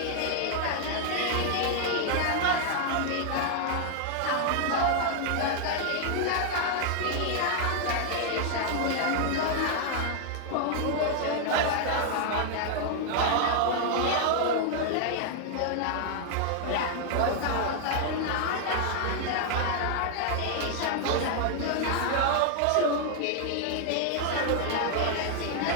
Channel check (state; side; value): different; both; correlation 0.00